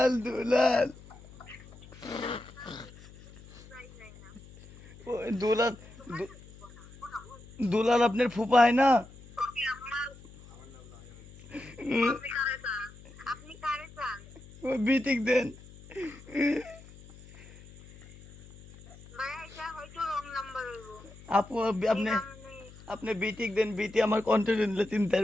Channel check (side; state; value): left; noise; hum, 20 dB below the sound